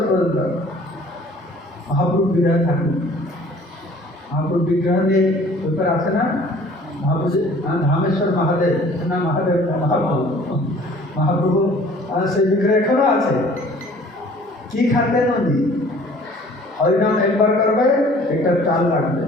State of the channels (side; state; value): both; normal; correlation 0.52